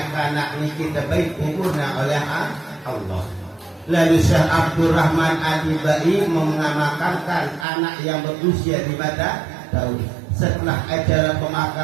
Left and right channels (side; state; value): left; drops out; at 7.7 s